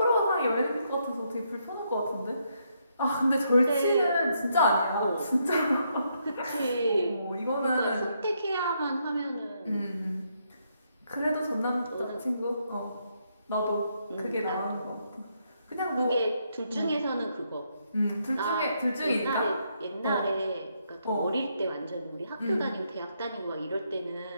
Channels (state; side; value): inverted; both; correlation -0.76